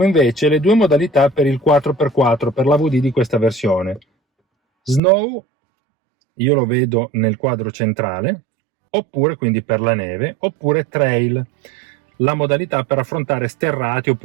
invece le due modalità per il 4x4 per l'AVD di questa versione. Snow, io lo vedo nel quadro centrale, oppure quindi per la neve, oppure trail, la modalità per affrontare sterrati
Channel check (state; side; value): drops out; left; at 5.0 s